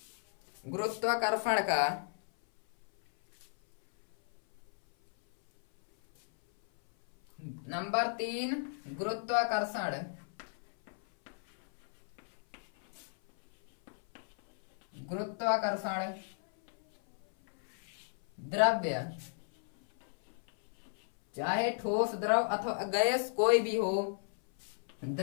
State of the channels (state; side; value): silent; right; 55 dB below the other